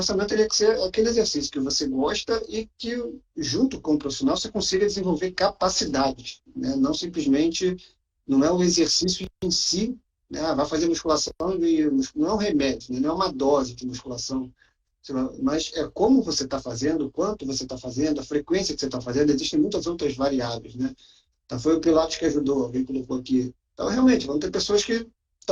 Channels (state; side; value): identical; both; correlation 1.00